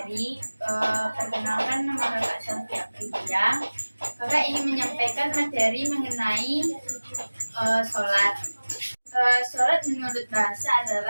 perkenalkan nama kakak Sofia Priya. Kakak ingin menyampaikan materi mengenai sholat. Sholat menurut bahasa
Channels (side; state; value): both; inverted; correlation -1.00